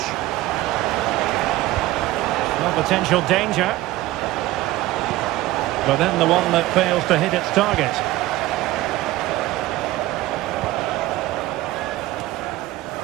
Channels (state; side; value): quieter; left; 16.8 dB